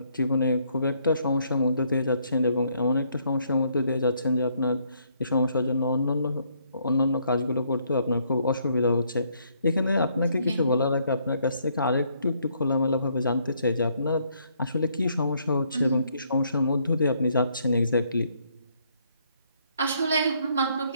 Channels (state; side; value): inverted; both; correlation -0.70